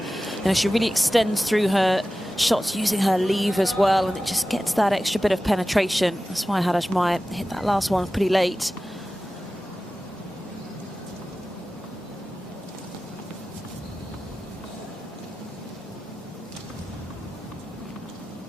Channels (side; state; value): both; normal; correlation 0.95